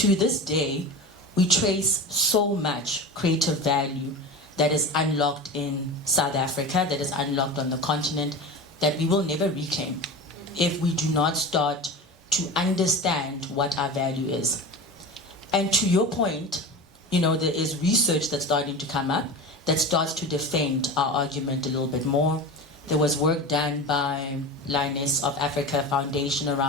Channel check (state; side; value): normal; both; correlation 0.29